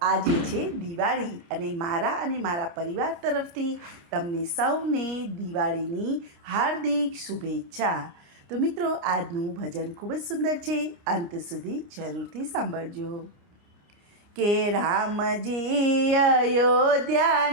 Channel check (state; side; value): late; left; 29 ms